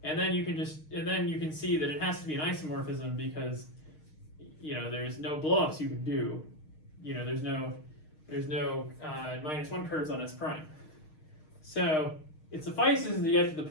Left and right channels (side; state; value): right; late; 6.5 ms